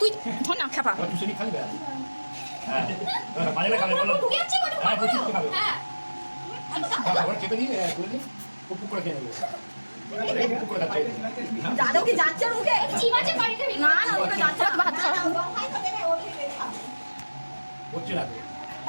তুই ধর না খাপা আর তুই খালি বে হ্যাঁ মাঝে খাবে বলো হ্যাঁ বুঝছিস তো খাবে আবার খেতে দিয়ে করে দিই পুক করে খেয়ে নেবে পুক করে খাচ্ছে যাদব কি যাচ্ছে ওর মুখে না না ওকে যাচ্ছে না হাত ছাড়া হচ্ছে না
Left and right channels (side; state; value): both; inverted; correlation -1.00